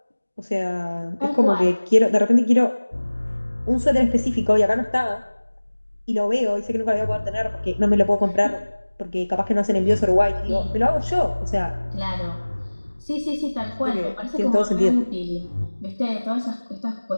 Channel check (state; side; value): inverted; both; correlation -1.00